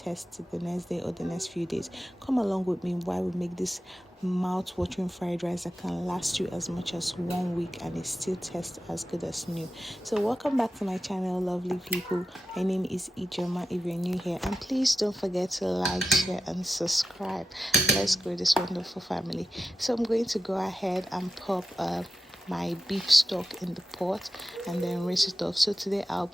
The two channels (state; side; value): normal; both; correlation 0.91